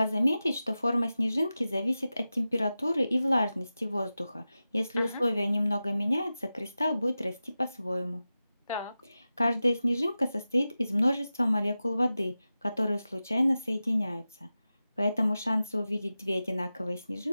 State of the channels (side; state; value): both; inverted; correlation -0.94